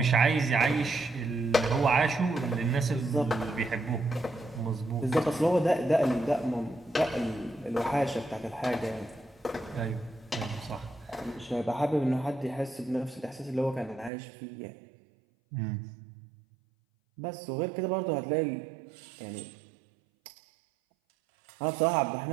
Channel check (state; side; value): drops out; left; at 14.1 s